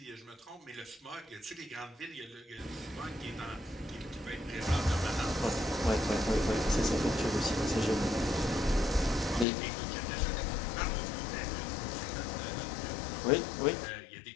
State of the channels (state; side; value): drops out; right; at 9.5 s